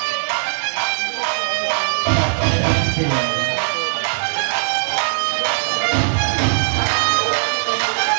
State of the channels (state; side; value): silent; left; digital silence